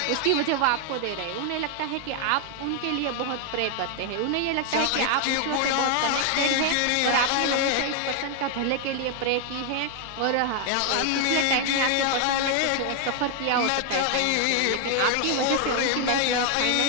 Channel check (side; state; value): both; different; correlation 0.00